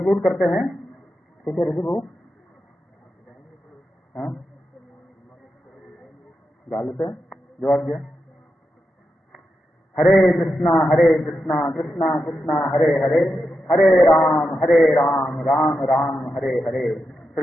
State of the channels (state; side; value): normal; both; correlation 0.87